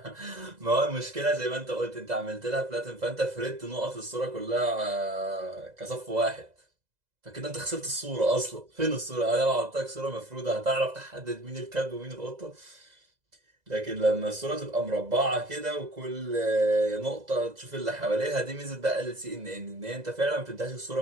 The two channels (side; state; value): left; late; 2.0 ms